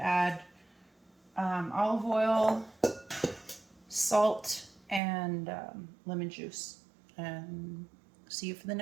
olive oil, salt, and lemon juice. And see you for the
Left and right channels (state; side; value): drops out; left; at 5.0 s